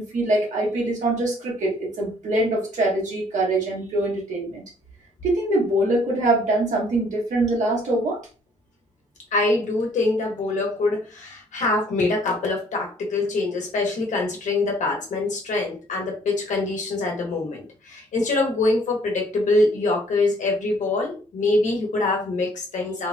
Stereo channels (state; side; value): normal; both; correlation 0.60